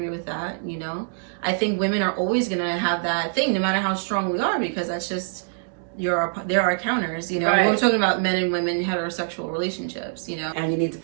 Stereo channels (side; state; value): left; silent; digital silence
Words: with that, you know. I think women are always gonna have that thing, no matter how strong we are, because that's just there are counters, you know. Right. We're talking about men and women heterosexual relationships, you know. And you need to